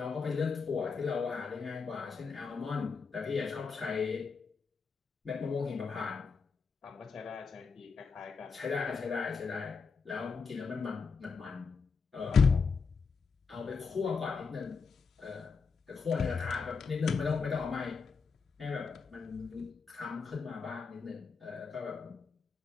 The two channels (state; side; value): quieter; right; 5.1 dB